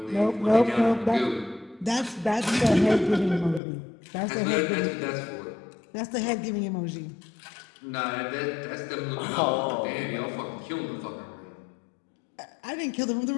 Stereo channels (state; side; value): drops out; right; at 3.6 s